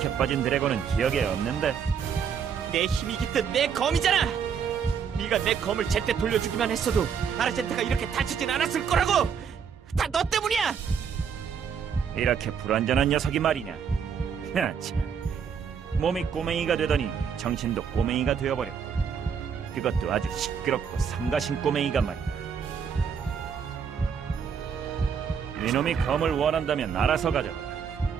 빠진 드래곤은 기억에 없는데. 내 힘이 깃든 내 검이잖아. 네가 내 검을 제때 돌려주기만 했어도 아르젠타가 이렇게 다치진 않았을 거라고. 다 너 때문이야. 이렇게 불완전한 녀석이 말이냐. 참. 몸이 꼬맹이가 되더니 정신도 꼬맹이가 되어버렸고, 그것도 아주 시끄럽고 삼가신 꼬맹이가 말이다. 이놈이 검을 원한다면 알아서 가져가.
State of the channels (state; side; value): quieter; left; 7.0 dB